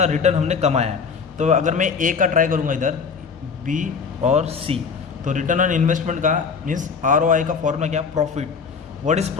रिटर्न हमने कमाया है। तो अगर मैं ए का ट्राई करूँगा इधर, बी और सी, तो रिटर्न ऑन इन्वेस्टमेंट का मीन्स ROI का फॉर्मूला क्या, profit. What is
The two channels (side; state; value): right; quieter; 5.7 dB